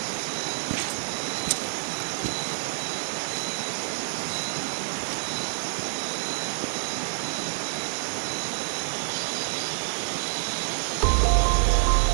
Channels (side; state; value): left; silent; digital silence